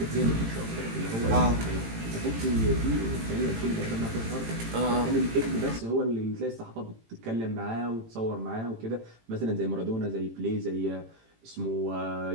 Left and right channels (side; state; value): left; late; 18 ms